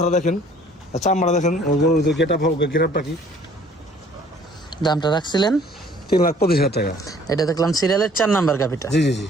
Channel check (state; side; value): normal; both; correlation 0.56